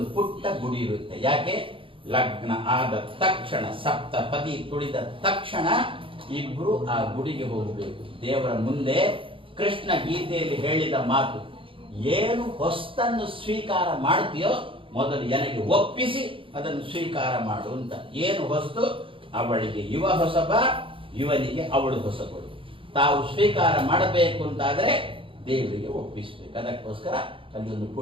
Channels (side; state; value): left; late; 0.25 ms